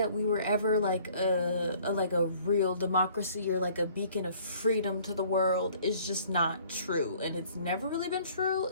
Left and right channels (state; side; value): inverted; both; correlation -0.56